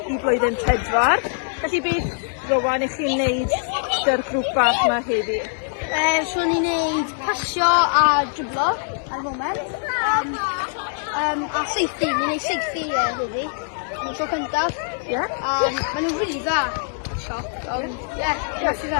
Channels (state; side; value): silent; right; 64 dB below the other